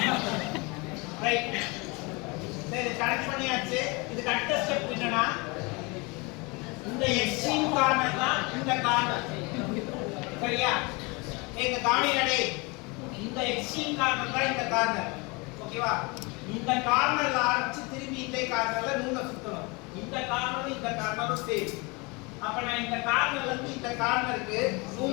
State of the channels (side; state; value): right; quieter; 27.5 dB